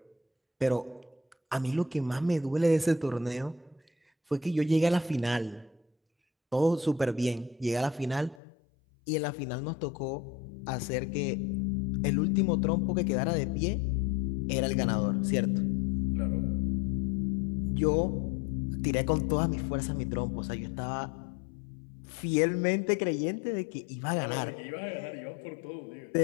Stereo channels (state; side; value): drops out; right; at 8.4 s